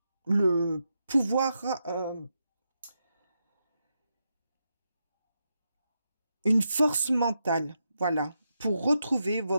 pouvoir, une force mentale, voilà, pour retrouver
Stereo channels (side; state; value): both; inverted; correlation -0.85